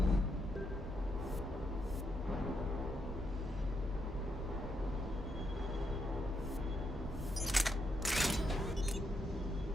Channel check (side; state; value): both; normal; correlation 0.80